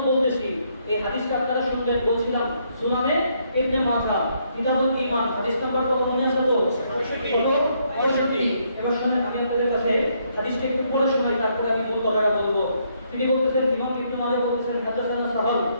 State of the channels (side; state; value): both; inverted; correlation -0.72